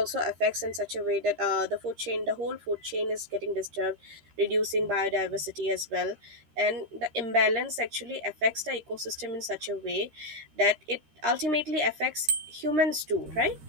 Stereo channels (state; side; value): late; left; 13 ms